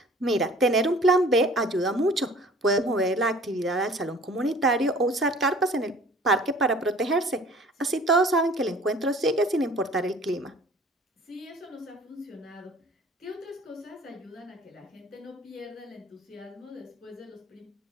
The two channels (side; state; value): both; normal; correlation 0.49